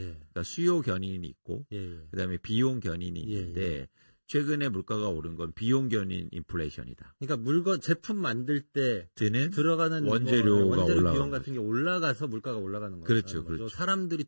수요 견인이 있고 그다음에 비용 견인이 있는데 최근에 물가가 오른 건 비용 견인 인플레이션이다. 그러니까 제품 만들 때 들어가는 원재료 비용 같은 게 올라가서 물가가 올라가는 거죠. 그렇죠. 사람들이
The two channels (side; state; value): both; inverted; correlation -1.00